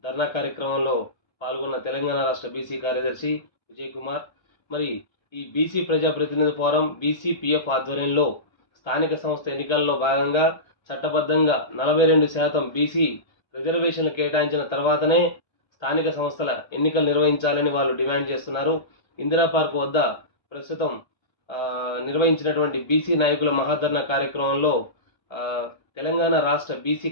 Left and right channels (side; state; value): right; late; 1.3 ms